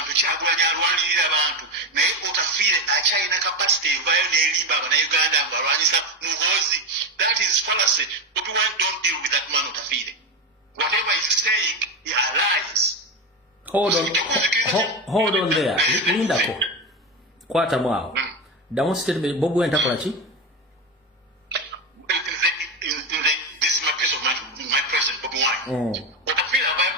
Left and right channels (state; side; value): normal; both; correlation 0.15